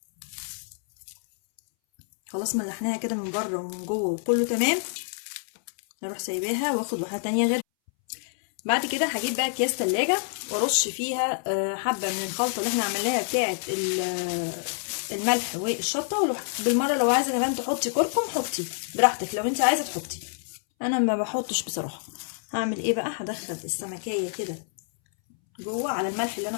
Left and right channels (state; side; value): silent; right; 60 dB below the other